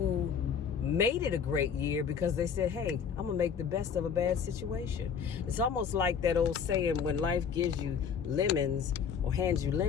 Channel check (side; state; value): right; quieter; 6.9 dB